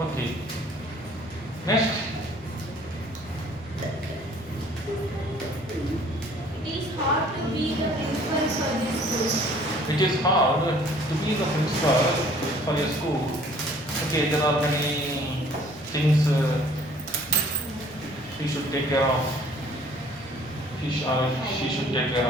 Okay. Next. It is hard to be the principal for this school. It is hard to be the principal for a school. Okay, there are many things he should take care of. He or she should take care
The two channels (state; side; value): noise; left; rumble, 25 dB below the sound